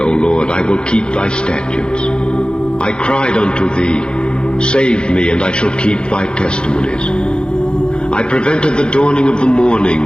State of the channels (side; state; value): right; late; 0.051 ms